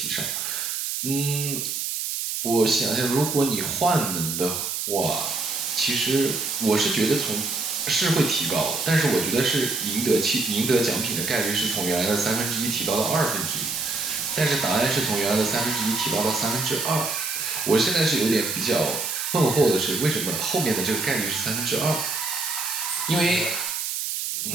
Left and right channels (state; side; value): noise; right; hiss, 2 dB below the sound